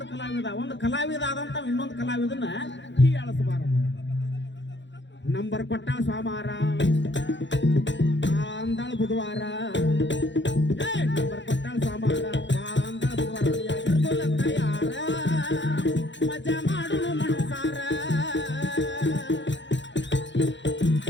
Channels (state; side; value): late; right; 0.53 ms